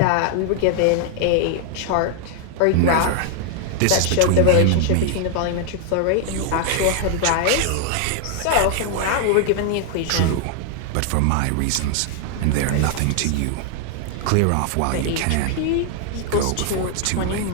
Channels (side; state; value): both; different; correlation 0.00